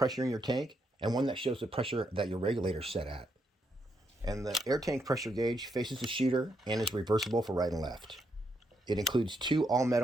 in your tank and one that shows the pressure that your regulator's set at. And the air tank pressure gauge faces the shooter and is reversible for right and left. It includes 2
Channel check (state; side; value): normal; both; correlation 0.79